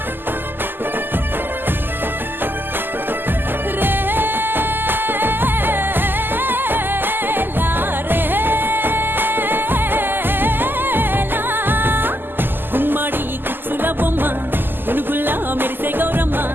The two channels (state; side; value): late; left; 0.094 ms